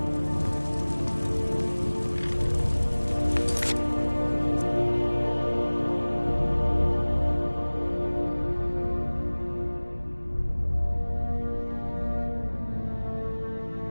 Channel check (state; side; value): inverted; both; correlation -1.00